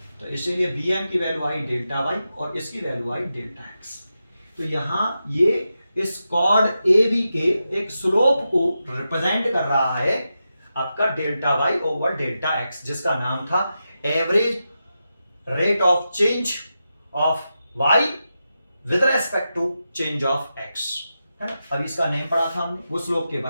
तो इसीलिए बी एम की वैल्यू आई डेल्टा वाई और इसकी वैल्यू आई डेल्टा एक्स। तो यहाँ ये इस कॉर्ड ए बी के एक स्लोप को रिप्रेजेंट कर रहा है आपका delta Y over delta X, जिसका नाम था average rate of change of Y with respect to change of X, है ना। अभी इसका नेम पढ़ा था हमने, वो स्लोप के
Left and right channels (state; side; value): inverted; both; correlation -0.89